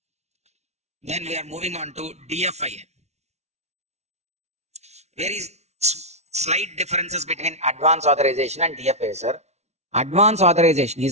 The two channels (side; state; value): left; late; 0.32 ms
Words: Then we are moving on to DFIA. There is slight differences between advance authorization and DFIA, sir. Advance authorization